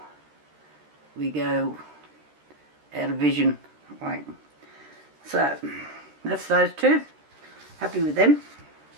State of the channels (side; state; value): left; late; 13 ms